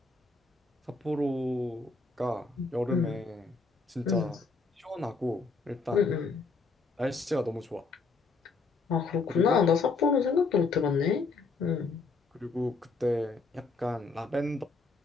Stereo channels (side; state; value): right; quieter; 4.1 dB